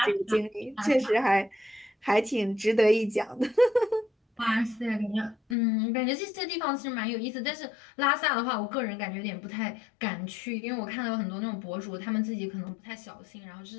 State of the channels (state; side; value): drops out; right; at 5.6 s